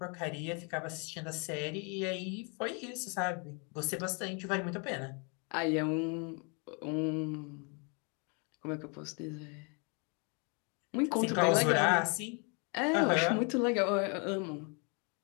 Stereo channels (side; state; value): right; quieter; 35.1 dB